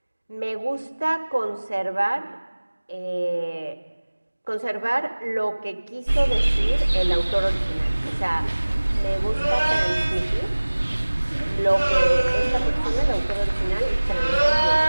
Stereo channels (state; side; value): inverted; both; correlation -1.00